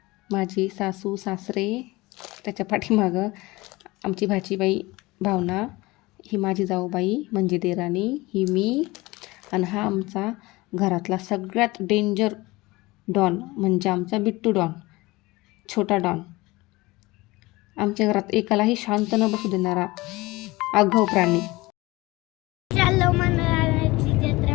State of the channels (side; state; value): right; quieter; 21.3 dB